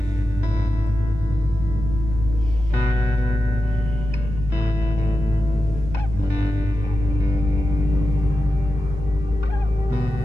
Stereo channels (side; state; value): both; normal; correlation 0.92